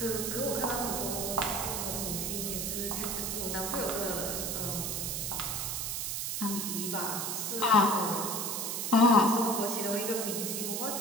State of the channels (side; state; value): right; noise; hiss, 2 dB below the sound